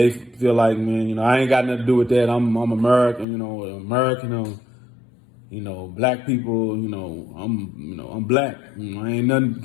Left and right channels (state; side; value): drops out; right; at 3.2 s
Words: feel like, man, I ain't got nothing to do with that. I'm American, American, black people, I'm black. I ain't